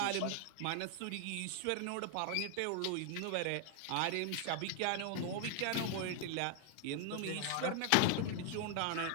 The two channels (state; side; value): different; both; correlation 0.00